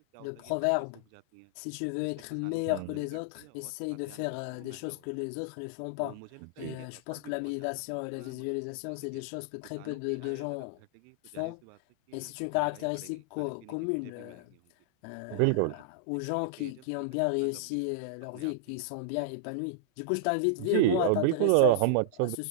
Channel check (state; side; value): different; both; correlation -0.01